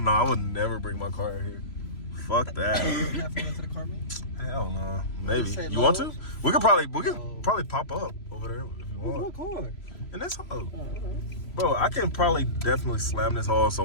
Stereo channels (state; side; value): late; right; 3.0 ms